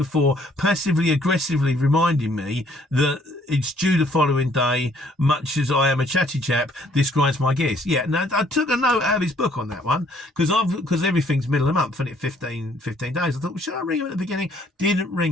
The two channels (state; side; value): normal; both; correlation 0.63